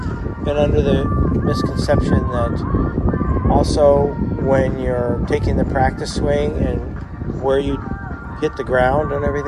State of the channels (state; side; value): identical; both; correlation 1.00